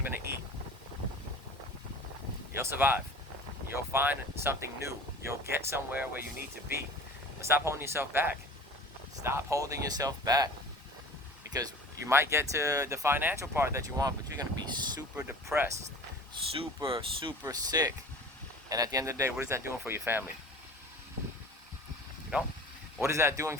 I going to eat? You'll survive. You'll find something new. You'll get somewhere where you need to be. But stop holding yourself back. Stop holding yourself back. Because you might get to the financial part that you want, but you're going to be super depressed, super sick. And at the end of the day, what is that doing for your family? You know? What is that doing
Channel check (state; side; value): normal; both; correlation 0.41